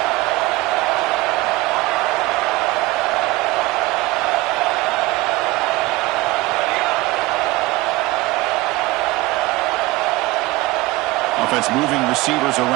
Offense moving receivers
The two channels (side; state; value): left; quieter; 20.0 dB